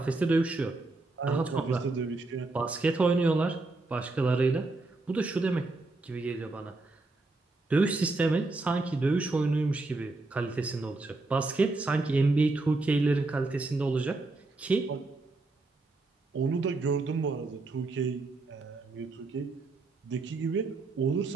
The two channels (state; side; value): quieter; left; 3.3 dB